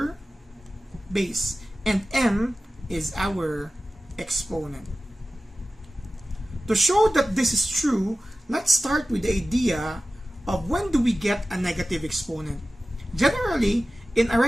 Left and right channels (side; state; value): both; normal; correlation 0.95